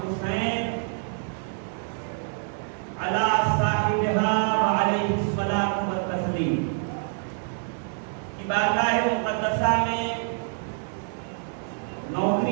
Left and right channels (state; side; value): silent; left; 61 dB below the other